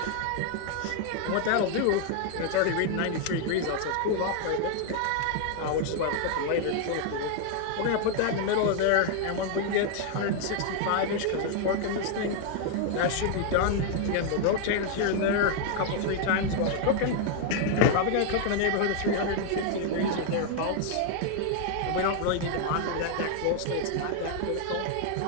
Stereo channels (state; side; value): different; both; correlation 0.00